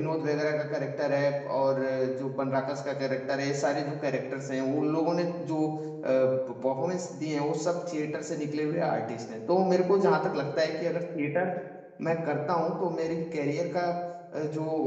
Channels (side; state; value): both; identical; correlation 1.00